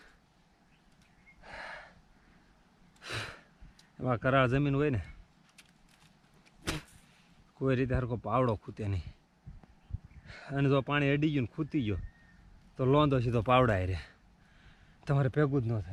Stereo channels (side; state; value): both; identical; correlation 1.00